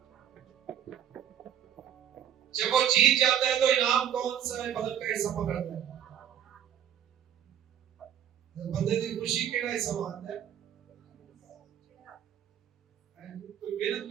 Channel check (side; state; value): left; quieter; 9.8 dB